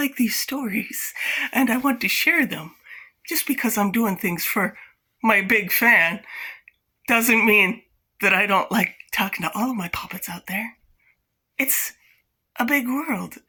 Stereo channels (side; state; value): both; identical; correlation 1.00